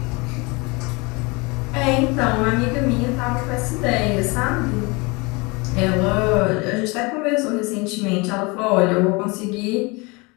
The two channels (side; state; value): right; quieter; 27.1 dB